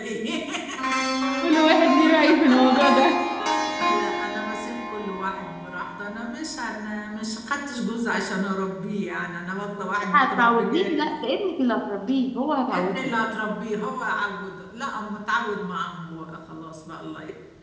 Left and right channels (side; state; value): both; identical; correlation 1.00